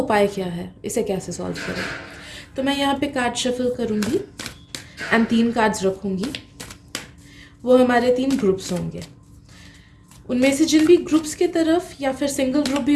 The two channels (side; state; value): both; identical; correlation 1.00